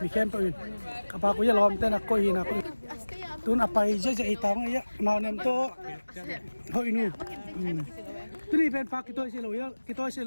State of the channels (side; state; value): both; inverted; correlation -1.00